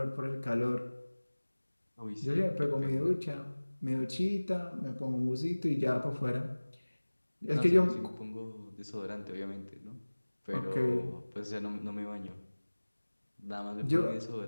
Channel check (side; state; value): both; inverted; correlation -1.00